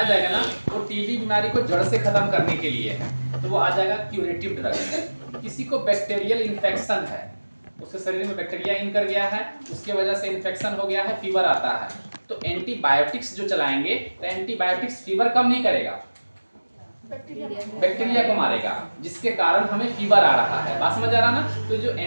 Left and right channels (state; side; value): inverted; both; correlation -1.00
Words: जाएगा ना, वो टीबी बीमारी को जड़ से खत्म करने के लिए है, तो वो आ जाएगा क्यूरेटिव ड्रग। किसी को बैक्टीरियल इन्फेक्शन है, उसके शरीर में बैक्टीरिया इन कर गया है, उसके वजह से इन्फेक्शन हो गया है, फीवर आता है, तो एंटीबायोटिक्स जो चलाएंगे, तो एंटीबायोटिक्स फीवर कम नहीं करेगा, बैक्टीरिया को मारेगा, जिसके कारण हमें फीवर आ रहा है। बात समझ आ रहा ना? तो जो